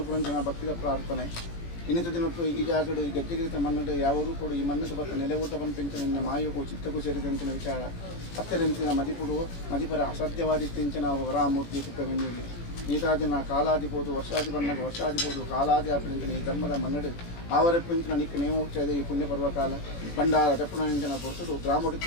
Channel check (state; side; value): late; right; 17 ms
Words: ಭಕ್ತಿದ ಪ್ರಾರ್ಥನೆ ಇನ್ನಿತ ದಿನಟ್ಟು ಈ ಜಾಗಡು ಈ ಗೆಜ್ಜೆಗಿರಿತ ಮನ್ನಡು ಯಾವ ರೂಪಡು ಈ ಮಣ್ಣಕ್ಕೆ ಬತ್ತ ನೆಲೆ ಊಟ ಪಂಪಿಂಚಿನ ನಿನ್ನ ಮಾಯಗೂ ಚಿತ್ತಕ್ಕೂ ಸೇರಿದಂಚಿನ ವಿಚಾರ ಹತ್ತಿರಂಚಿನ ಮದಿಪುಡು ಮದಿಪರ ಅಸಾಧ್ಯವಾದಿತ್ತಿಂಚಿನ ವರಾಮೂರ್ತಿ ಕುಪ್ಪೆಂಜಲಿ ನೀತಾದಿನ ಕಾಲಾದಿಬೋದು ವರ್ಷಾದಿ ಬಣ್ಣಗ ವರ್ಷಾದಿಬೋದು ಕಾಲಾದಿ ಆಪಿಂಚಿನ ಈ ಧರ್ಮದ ಮನ್ನಡು ಆವರಪ್ಪಿಂಚಿನ ನಿಕ್ಕ ನೇಮೋಚ್ಚದ ಈ ಪುಣ್ಯ ಪರ್ವಕಾಲ ಭಂಡಾರ ದಪ್ಪುಣಂಚಿನ ಪೊರ್ತುಡು